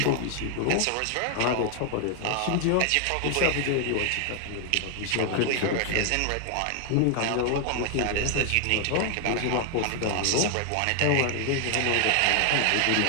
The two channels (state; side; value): different; both; correlation 0.00